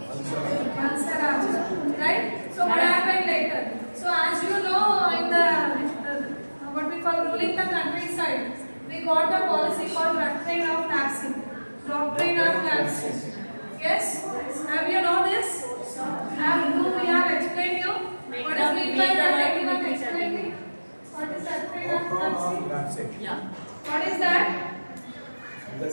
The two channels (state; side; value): inverted; both; correlation -1.00